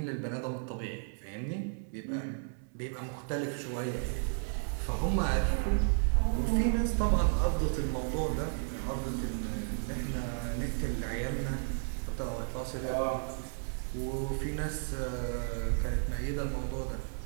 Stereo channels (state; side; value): silent; left; 56 dB below the other